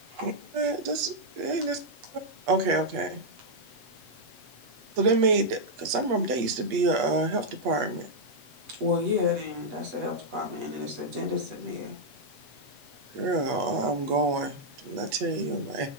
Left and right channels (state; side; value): late; left; 8.3 ms